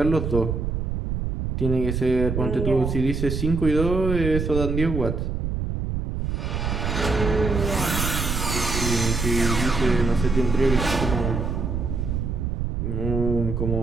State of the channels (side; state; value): right; noise; rumble, 2 dB below the sound